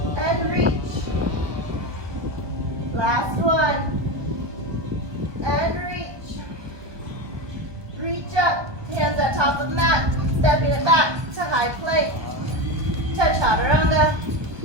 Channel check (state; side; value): late; left; 1.2 ms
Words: mat, stepping it back to high plank, to chaturanga.